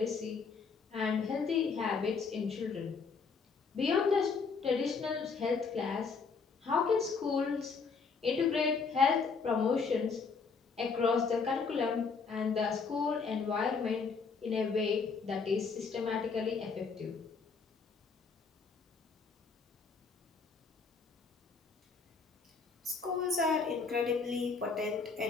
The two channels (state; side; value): quieter; right; 5.1 dB